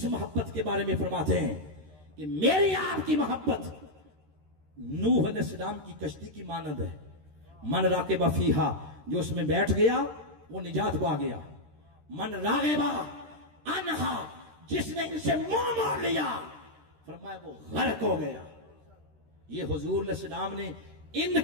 मोहब्बत के बारे में फरमाते हैं कि मेरी आपकी मोहब्बत नूह अलैहिस्सलाम की कश्ती की मानद है। मन राकेबा फीहा, जो उसमें बैठ गया वो निजात पा गया। मन रागेबा अनहा, जिसने इनसे मुंह मोड़ लिया, फरमाया वो गर्क हो गया। ये हुजूर अलैहिस्सलाम ने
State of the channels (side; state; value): left; late; 13 ms